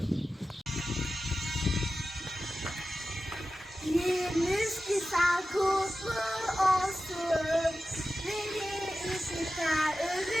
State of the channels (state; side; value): normal; both; correlation 0.93